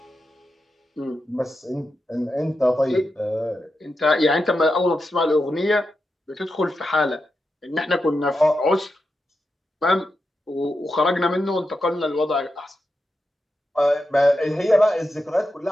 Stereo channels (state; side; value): normal; both; correlation 0.88